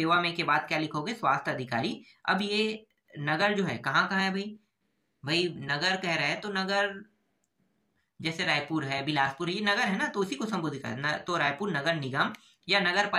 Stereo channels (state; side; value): identical; both; correlation 1.00